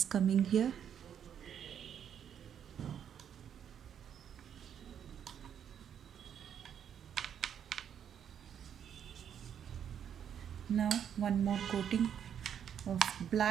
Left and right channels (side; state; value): left; quieter; 8.7 dB